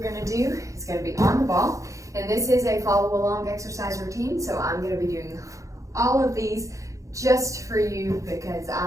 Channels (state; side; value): late; left; 0.15 ms